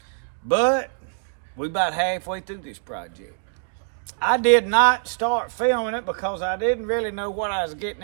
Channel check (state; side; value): silent; left; digital silence